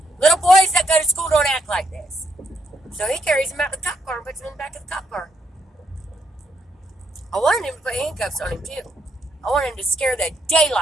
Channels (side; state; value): both; normal; correlation 0.75